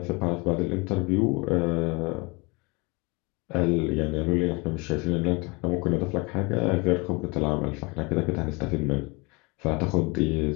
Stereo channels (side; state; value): right; quieter; 27.5 dB